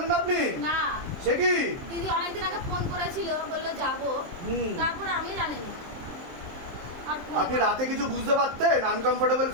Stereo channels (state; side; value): late; left; 23 ms